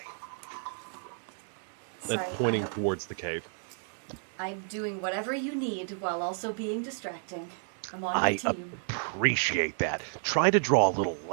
Sorry, Pointing towards the cave. I'm doing whatever you need while also being distracting. I'm on your team. Appreciate that. Try to draw a little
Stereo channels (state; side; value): silent; left; 57 dB below the other